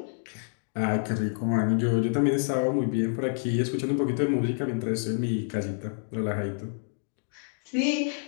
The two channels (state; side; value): silent; right; digital silence